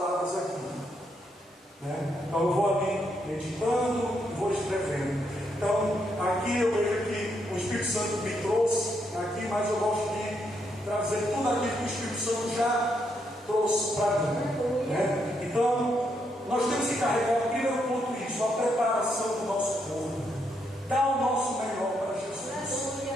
aqui, né? Então eu vou ali meditando e vou escrevendo. Então aqui eu vejo que o Espírito Santo me trouxe aqui, mas eu gosto de trazer tudo aquilo que o Espírito Santo já trouxe para mim, né? Então nós temos que carregar primeiro ponto isso, a preparação do nosso corpo, dar o nosso melhor para Jesus,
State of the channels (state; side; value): normal; both; correlation 0.77